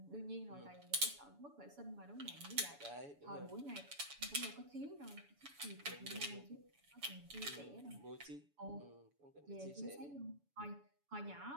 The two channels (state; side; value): late; left; 7.0 ms